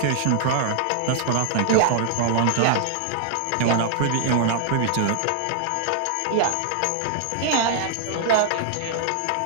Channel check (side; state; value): both; different; correlation 0.00